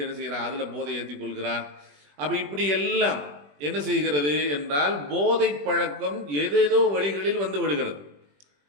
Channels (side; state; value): left; late; 21 ms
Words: என்ன செய்கிறான், அதில் போதை ஏற்றி கொள்கிறான். அப்போ இப்படி எல்லாம் என்ன செய்கிறது என்றால் போதை பழக்கம் ஏதேதோ வழிகளில் விடுகிறது.